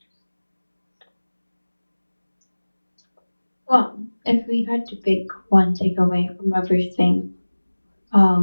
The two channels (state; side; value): inverted; both; correlation -1.00